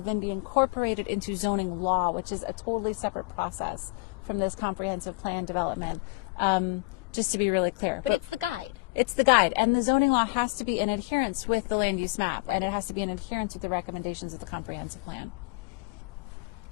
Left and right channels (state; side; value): quieter; right; 25.9 dB